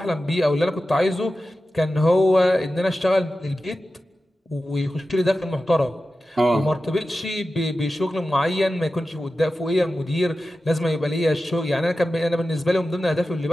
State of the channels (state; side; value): normal; both; correlation 0.93